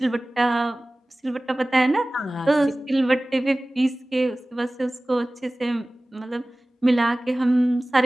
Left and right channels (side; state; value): both; normal; correlation 0.98